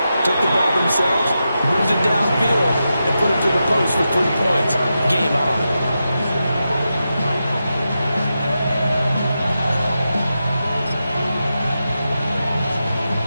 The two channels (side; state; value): both; inverted; correlation -0.89